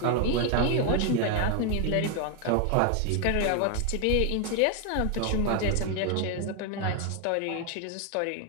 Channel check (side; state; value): both; different; correlation 0.01